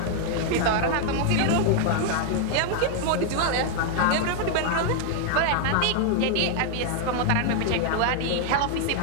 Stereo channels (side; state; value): both; different; correlation 0.00